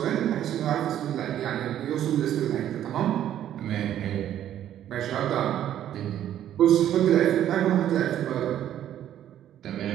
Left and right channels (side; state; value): left; quieter; 11.2 dB